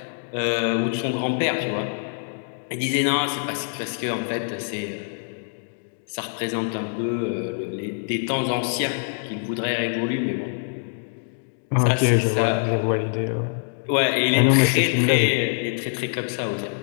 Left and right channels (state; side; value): silent; right; digital silence